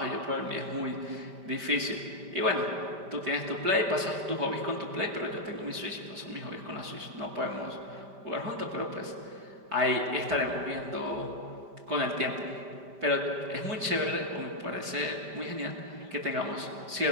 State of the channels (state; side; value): late; left; 5.1 ms